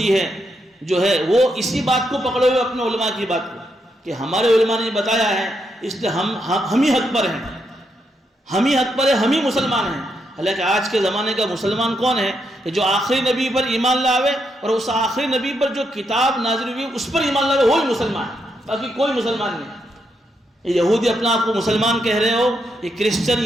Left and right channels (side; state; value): both; normal; correlation 0.80